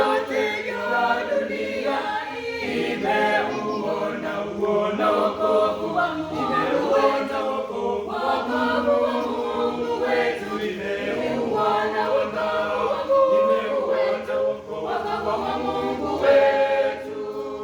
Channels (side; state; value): both; identical; correlation 1.00